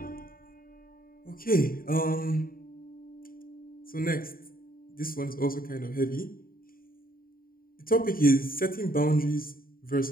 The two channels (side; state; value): right; late; 0.42 ms